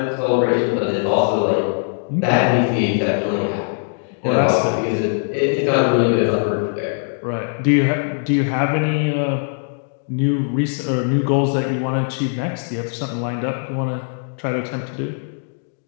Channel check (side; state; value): right; silent; 65 dB below the other